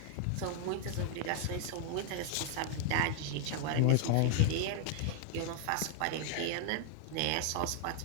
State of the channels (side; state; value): both; different; correlation 0.00